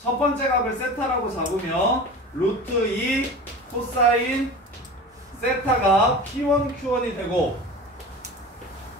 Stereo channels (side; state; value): both; normal; correlation 0.34